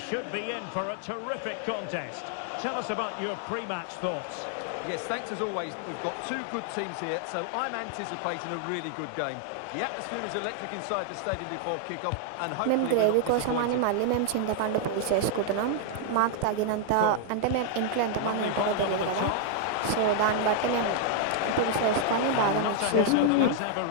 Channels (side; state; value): both; different; correlation 0.00